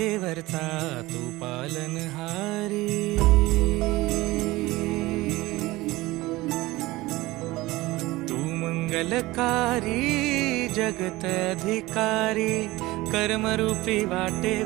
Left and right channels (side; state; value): left; quieter; 19.6 dB